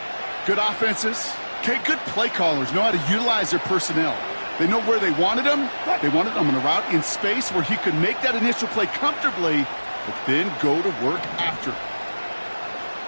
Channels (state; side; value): inverted; both; correlation -1.00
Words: Good offenses. Okay, good play callers know how to utilize their personnel. They know where they wanted him. They wanted him on a route in space where he could make that initial play comfortably, but then go to work after.